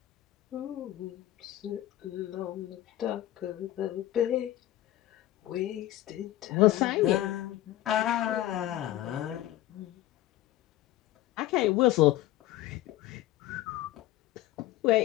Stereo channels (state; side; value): quieter; right; 14.7 dB